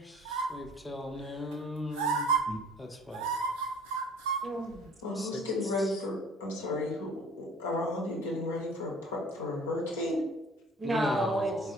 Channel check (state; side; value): normal; both; correlation 0.50